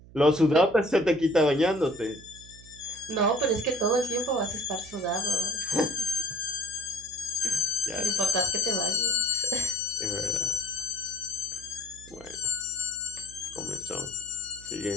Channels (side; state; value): right; noise; hum, 20 dB below the sound